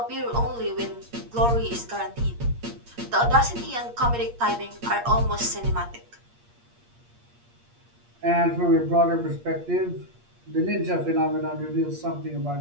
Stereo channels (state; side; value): late; left; 8.5 ms